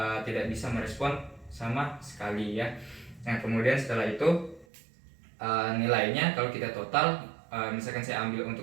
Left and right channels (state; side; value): drops out; left; at 4.7 s